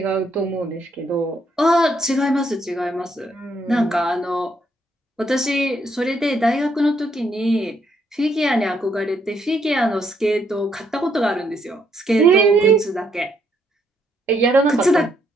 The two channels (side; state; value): both; normal; correlation 0.73